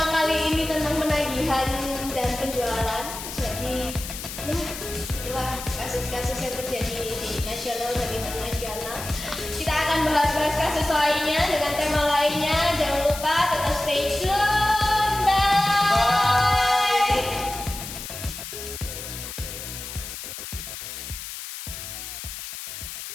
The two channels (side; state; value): left; noise; hiss, 9 dB below the sound